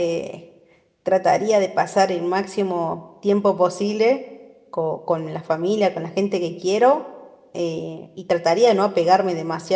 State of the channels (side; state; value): both; identical; correlation 1.00